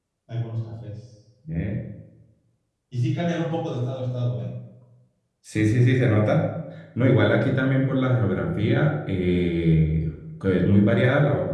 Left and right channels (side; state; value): both; identical; correlation 1.00